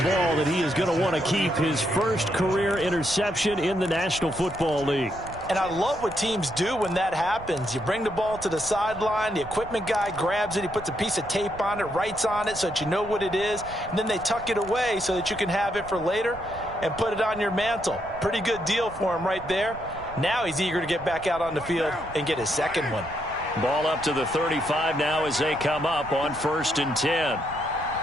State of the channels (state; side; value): noise; right; rumble, 16 dB below the sound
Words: that he is going to want to keep, his first career interception in the National Football League. And I love what teams do when that happens. You bring the ball to the sideline, the equipment guy grabs it, he puts a piece of tape on it, writes on it so that you know what it is, and then they tuck it away so that you can have it for later and put it on your mantle. Pretty good deal for him right there. Now he's eager to get back out on the field and get his second one. Ball up to the 35 now as they come up on 1st and 10.